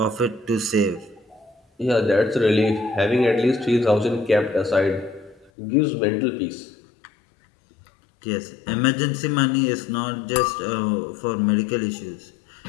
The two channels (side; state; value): right; drops out; at 5.5 s